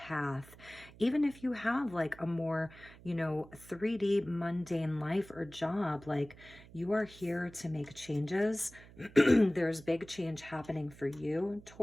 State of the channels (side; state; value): right; noise; hum, 21 dB below the sound